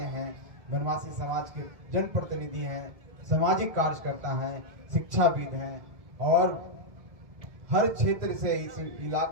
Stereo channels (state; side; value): late; left; 1.7 ms